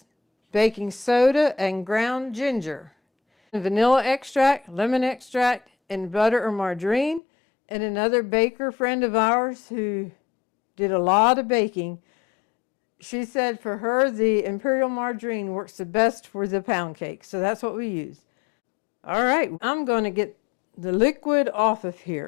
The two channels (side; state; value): right; drops out; at 7.2 s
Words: baking soda and ground ginger, vanilla extract, lemon extract, and butter or margarine. And another baker friend of ours who did a lot of baking, she said for her the Imperial Margarine works the best for the pound cake. So that's what we use. All right, I'm going to get the liquid off of